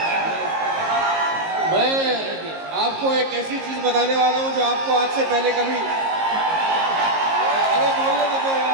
मैं आपको एक ऐसी चीज बताने वाला हूं जो आपको आज से पहले कभी, अरे बोलने तो दो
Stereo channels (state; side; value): late; left; 19 ms